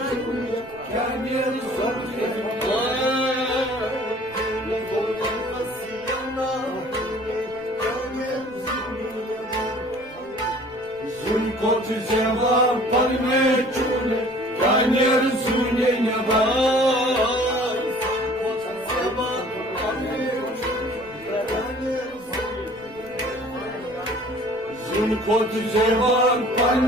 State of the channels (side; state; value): right; noise; rumble, 25 dB below the sound